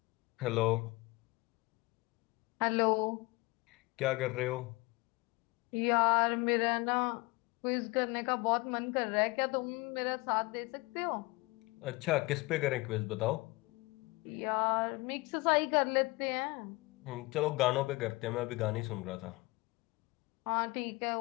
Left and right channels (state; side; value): quieter; right; 23.5 dB